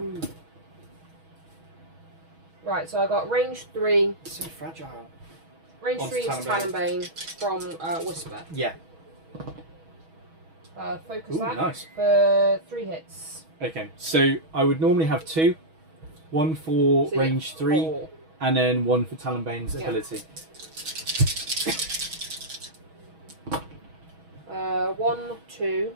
Right, so I got range 3. So fragile. Range 3 is Talonbane from Whisper. Yeah. Focus that nice. For 3 hits. Okay, so I would normally have 2. 1 for range 3, 4. and then 1 for Talonbane's ability. 1, 2.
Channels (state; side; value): late; left; 6.2 ms